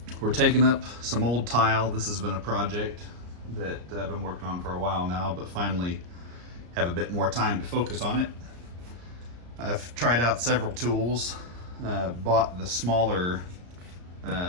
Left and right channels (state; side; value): late; left; 34 ms